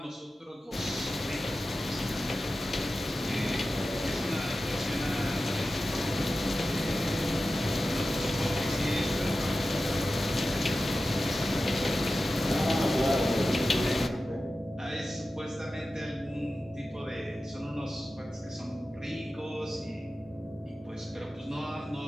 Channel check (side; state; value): both; normal; correlation 0.94